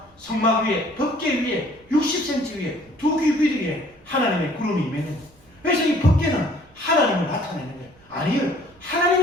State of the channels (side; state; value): right; noise; rumble, 29 dB below the sound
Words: 성막 위에, 법궤 위에, 60cm 위에, 두 귀 위에 하나님의 구름이 임했는 거예요. 그래서 이 법궤는 하나님을 나타내는 거예요. 아니요,